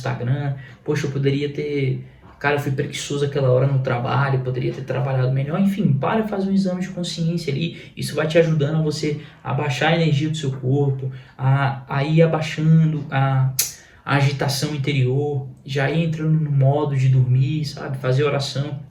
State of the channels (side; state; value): both; identical; correlation 1.00